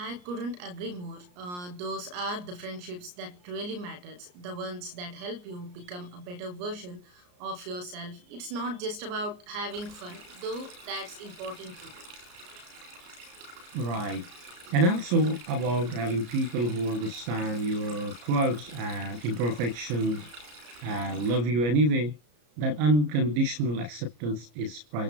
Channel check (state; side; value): late; left; 34 ms